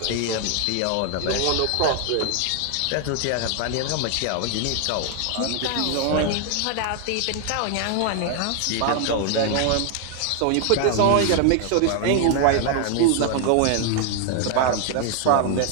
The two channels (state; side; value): different; both; correlation 0.00